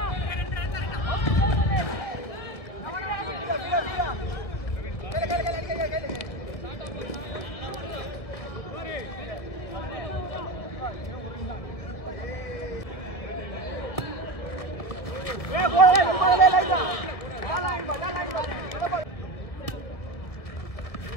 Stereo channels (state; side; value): late; right; 1.7 ms